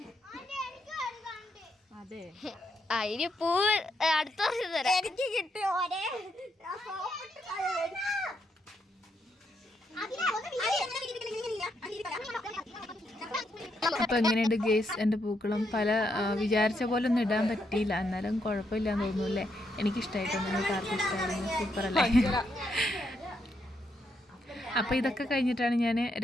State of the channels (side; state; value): both; normal; correlation 0.79